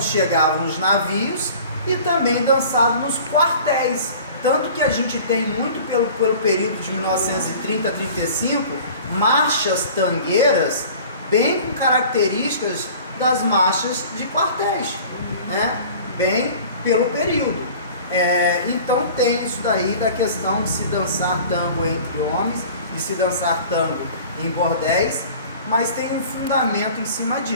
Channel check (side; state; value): both; inverted; correlation -0.44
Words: chegavam os navios, e também dançado nos quartéis, tanto que a gente tem muito pelo período de 1930 a 35, marchas tangueiras bem com características das marchas de quartéis, né? Bem pelo período. Então tem isso daí da questão de se dançar tango entre homens, de se dançar tango em bordéis, mas tem um fundamento em cima